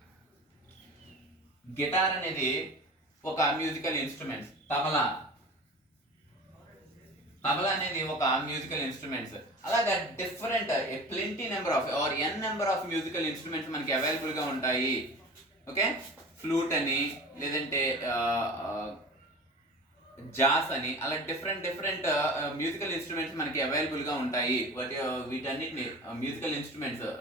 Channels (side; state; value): both; normal; correlation 0.37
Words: గిటార్ అనేది ఒక మ్యూజికల్ ఇన్స్ట్రుమెంట్స్. తబలా అనేది ఒక మ్యూజికల్ ఇన్స్ట్రుమెంట్స్. అలాగా different plenty number of or n number of musical instruments మనకి అవైలబుల్ గా ఉంటాయి. ఓకే, ఫ్లూట్ అని, లేదంటే జాస్ అని, అలా డిఫరెంట్ మ్యూజికల్ ఇన్స్ట్రుమెంట్స్ మనకి అవైలబుల్ గా ఉంటాయి. వీటన్నిటిని musical instruments